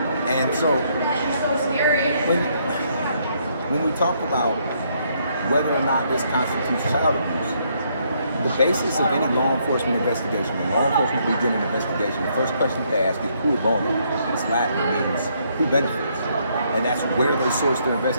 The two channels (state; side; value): inverted; both; correlation -0.71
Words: And so when we talk about whether or not this constitutes child abuse, the basis of any law enforcement investigation, when law enforcement begin an investigation, the first question they ask is cui bono. It's Latin, means who benefits. And that's where they source their